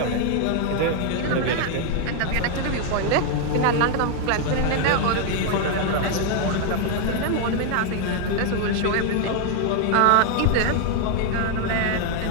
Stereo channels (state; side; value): different; both; correlation 0.01